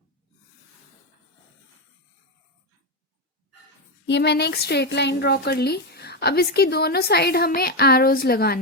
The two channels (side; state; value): both; normal; correlation 0.09